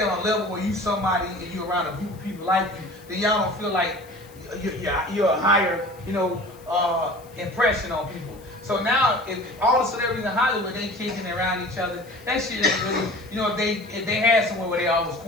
on a level where you somebody and you around a group of people like you, then y'all don't feel like you're a higher, impression on people. So now, if all the celebrities in Hollywood, they kicking around each other, that shit ain't really, you know, if they had somewhere where they always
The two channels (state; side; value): noise; left; hiss, 26 dB below the sound